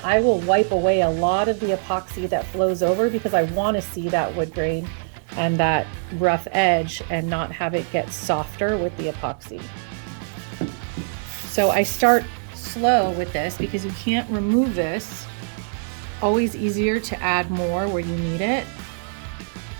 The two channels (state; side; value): silent; left; digital silence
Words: will wipe away a lot of the epoxy that flows over because I want to see that wood grain and that rough edge and not have it get softer with the epoxy. So I start slow with this because you can't remove this. Always easier to add more where you need it.